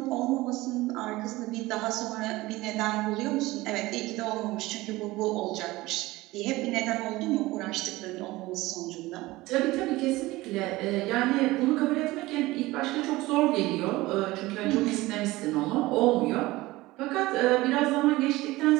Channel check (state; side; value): quieter; left; 19.4 dB